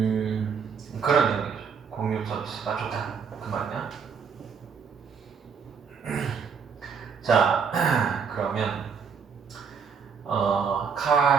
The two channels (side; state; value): left; quieter; 6.2 dB